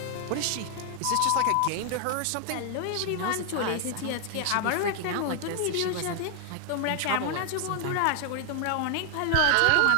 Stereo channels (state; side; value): different; both; correlation 0.00